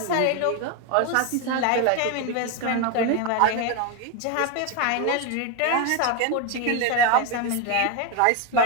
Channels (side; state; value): both; different; correlation 0.02